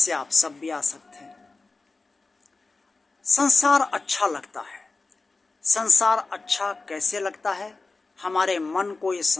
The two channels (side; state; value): right; quieter; 3.7 dB